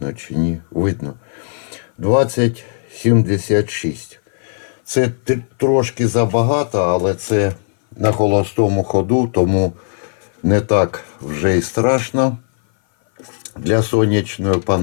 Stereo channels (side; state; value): right; silent; 58 dB below the other